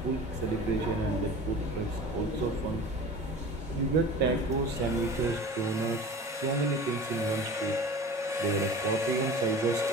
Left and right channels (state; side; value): normal; both; correlation 0.38